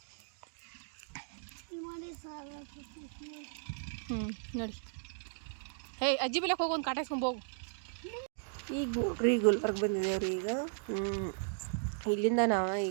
ನೋಡಿ, ಹೇ ಅಜ್ಜಿ ಬಿಲಕ್ಕೆ ಹೋಗಿ ಒಂದು ಕಾಟ ಇಸ್ಕೊಂಡು ಹೋಗು. ಈಗ ನೋಡ್ರಿ ಗುಲ್ಬರ್ಗ ಬಂದಿದ್ದೇವ್ರಿ. ಈಗ ಇಲ್ಲಿಂದ ನಾವು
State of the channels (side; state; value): left; silent; digital silence